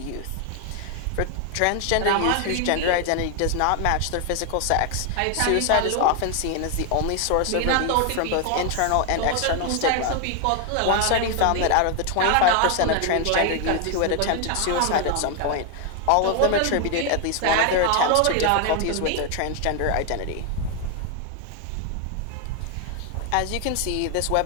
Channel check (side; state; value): both; different; correlation 0.00